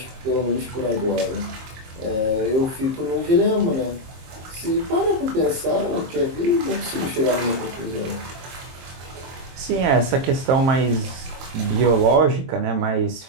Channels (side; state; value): left; late; 23 ms